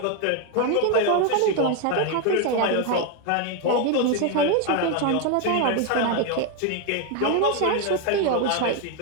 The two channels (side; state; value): both; different; correlation 0.01